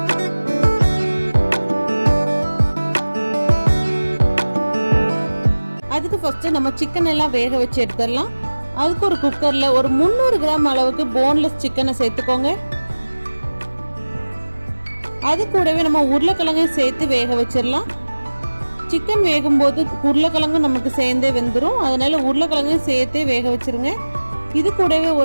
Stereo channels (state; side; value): inverted; both; correlation -1.00